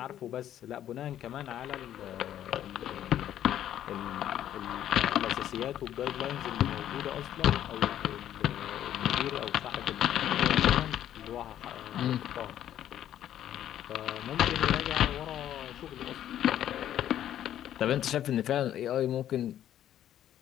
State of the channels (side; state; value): right; quieter; 11.3 dB